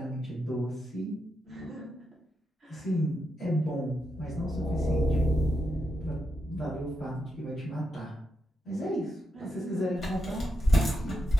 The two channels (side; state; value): both; normal; correlation 0.85